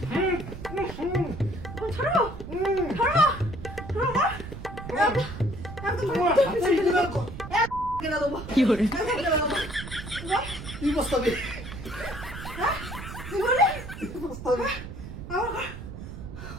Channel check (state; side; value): noise; right; rumble, 10 dB below the sound